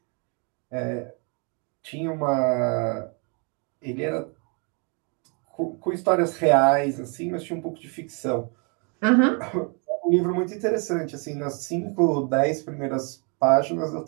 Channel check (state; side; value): quieter; left; 35.2 dB